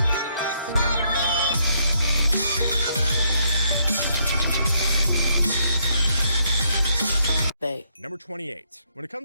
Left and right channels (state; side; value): inverted; both; correlation -0.72